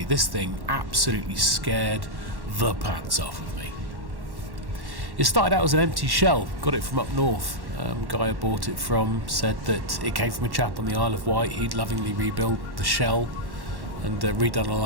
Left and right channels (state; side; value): late; left; 1.1 ms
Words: this thing absolutely scared the pants off of me. It started out as an empty shell, got it from up north. Guy I bought it from said that it came from a chap on the Isle of Wight. He'd lovingly rebuilt the shell and redone a